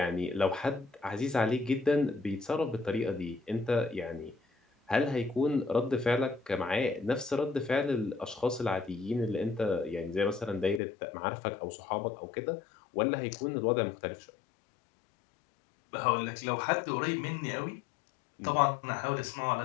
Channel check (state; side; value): drops out; right; at 10.8 s